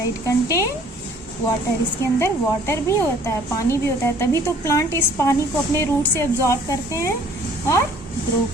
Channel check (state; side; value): normal; both; correlation 0.56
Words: है, इट कंटेन वाटर, इसके अंदर वाटर भी होता है, पानी भी होता है। तभी तो प्लांट इस पानी को अपने रूट से एब्जॉर्ब करते हैं और ग्रो